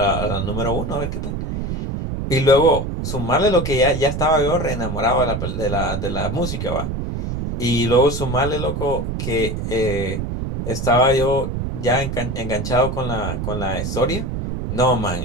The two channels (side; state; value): right; noise; rumble, 4 dB below the sound